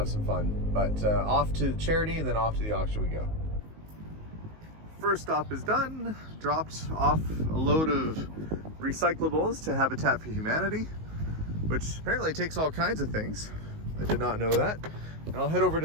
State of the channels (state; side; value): late; left; 19 ms